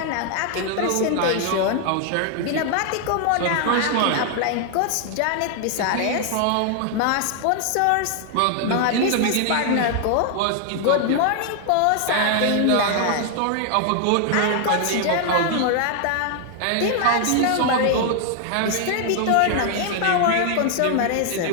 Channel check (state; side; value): different; both; correlation 0.00